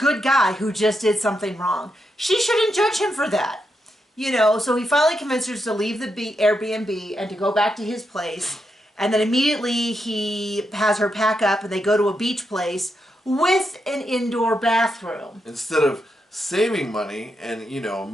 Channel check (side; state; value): both; normal; correlation 0.83